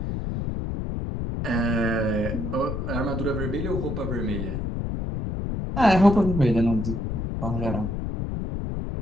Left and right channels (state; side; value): noise; left; rumble, 3 dB below the sound